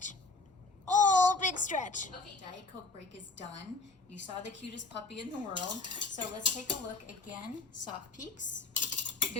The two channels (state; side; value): quieter; right; 3.7 dB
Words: Oh, big stretch. Okay, Diet Coke break is done. You saw the cutest puppy in the world. So let's take a look again. Soft peaks.